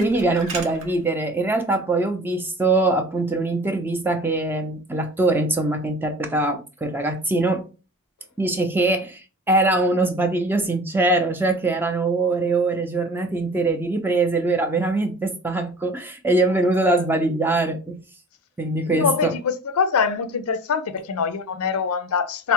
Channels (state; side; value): normal; both; correlation 0.41